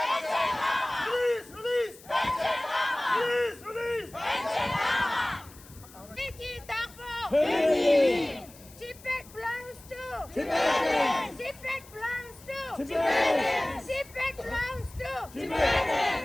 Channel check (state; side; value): noise; left; hiss, 22 dB below the sound